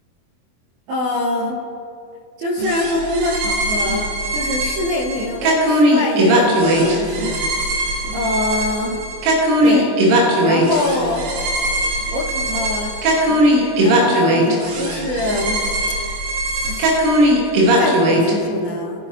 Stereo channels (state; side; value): late; left; 24 ms